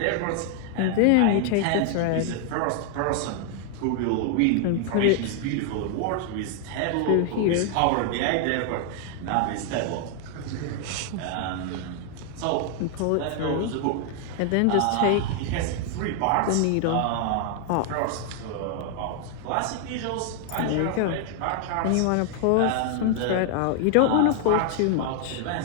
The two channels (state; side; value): different; both; correlation 0.00